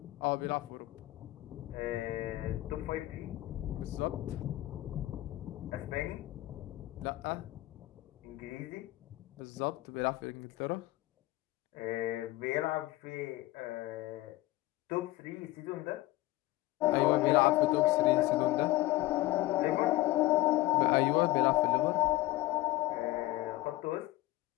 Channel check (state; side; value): quieter; right; 17.7 dB